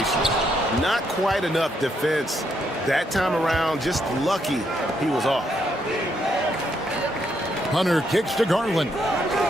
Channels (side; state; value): both; normal; correlation 0.76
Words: Not quite enough defense that time around. Just lucky he was off. Hunter kicks to Garland.